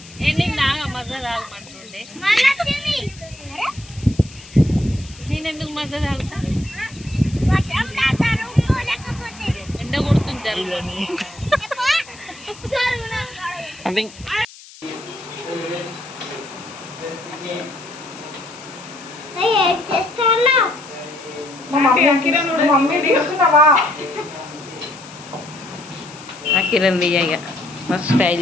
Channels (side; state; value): left; noise; hiss, 19 dB below the sound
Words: నీకు నాగా మజా తాగమంటుండే నేనెందుకు మజా తాగుతా ఎండ కొడుతుంటారు మమ్మీ తీస్తున్నావా? కిరణ్ దియ్యగా మస్తు స్టైల్